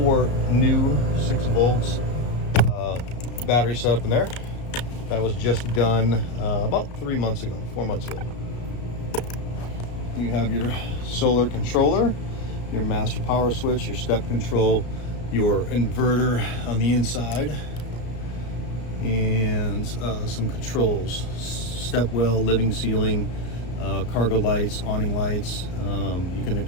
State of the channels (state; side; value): late; right; 34 ms